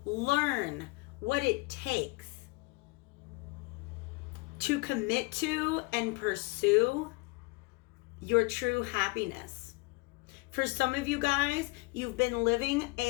learn what it takes to commit to and pursue your true happiness. For some of you guys, you've been living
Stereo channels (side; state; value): right; quieter; 27.1 dB